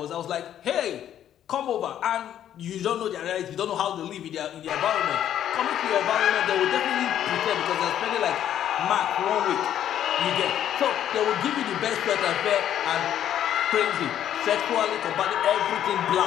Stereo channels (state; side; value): quieter; right; 10.7 dB